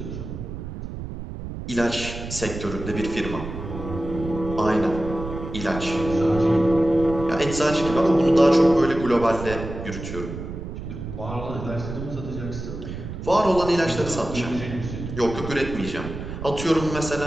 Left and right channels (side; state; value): right; noise; rumble, 8 dB below the sound